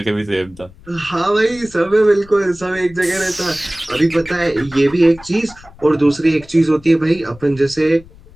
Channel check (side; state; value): left; noise; rumble, 23 dB below the sound